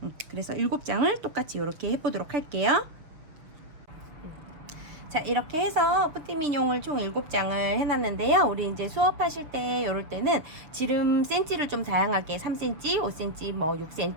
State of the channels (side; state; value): left; late; 6.3 ms